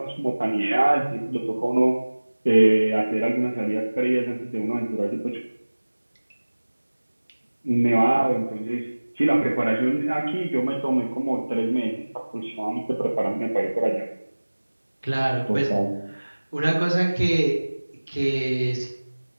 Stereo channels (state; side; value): inverted; both; correlation -1.00